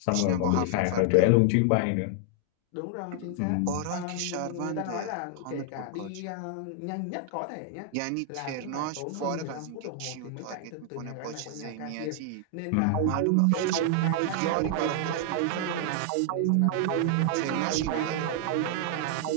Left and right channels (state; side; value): different; both; correlation 0.00